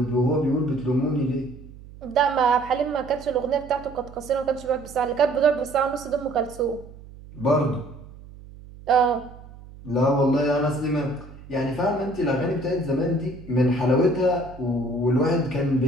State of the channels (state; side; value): noise; right; hum, 18 dB below the sound